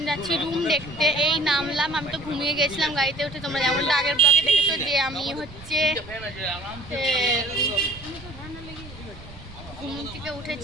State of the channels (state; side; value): noise; right; rumble, 17 dB below the sound